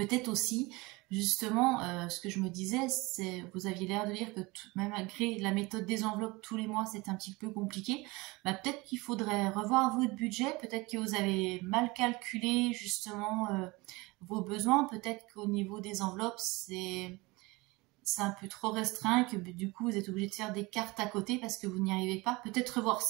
aussi, justement, ce que je me disais, c'est, vous aviez l'air de dire que même malgré la méthode des enveloppes tous les mois, c'est un petit peu compliqué. Peut-être qu'il faudrait revoir votre budget, peut-être que vous avez mal calculé justement vos besoins, peut-être qu'au niveau des enveloppes, c'est un peu trop restreint, que du coup vous êtes obligé de faire des cartes à côté parce que vous n'y arrivez pas. Peut-être revoir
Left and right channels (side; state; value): left; quieter; 23.5 dB